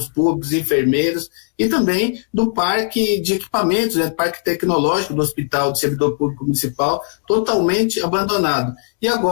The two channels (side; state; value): right; silent; digital silence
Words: públicos, enfermeiros, e também do parque de equipamentos, né? Parque tecnológico do Hospital do Servidor Público Municipal, totalmente abandonado. E